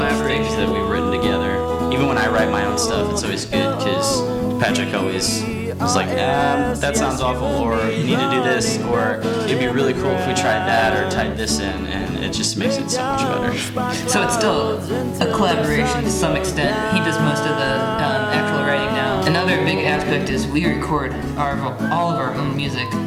things that we've written together. Even when I write my own stuff, it's always good, because Patrick always was like, that sounds awful, or you need to do this, or it'd be really cool if we tried that or tied this in, and it just makes it so much better. So it's still a collaboration to some extent. He does most of the actual writing now. Another big aspect is we record all of our own music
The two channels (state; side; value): identical; both; correlation 1.00